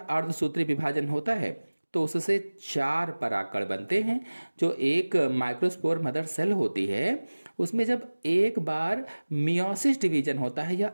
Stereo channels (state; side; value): inverted; both; correlation -1.00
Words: विभाजन होता है तो उससे 4 परागकण बनते हैं। जो एक माइक्रोस्पोर मदर सेल होती है उसमें जब एक बार मियोसिस डिवीजन होता है या